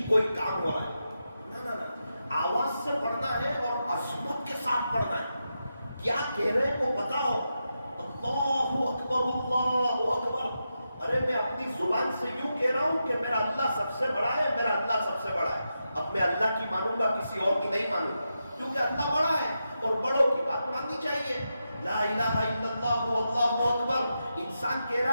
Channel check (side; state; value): both; inverted; correlation -0.88